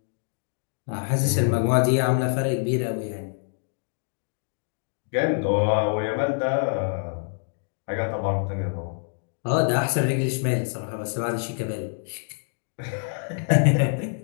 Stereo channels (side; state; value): right; silent; digital silence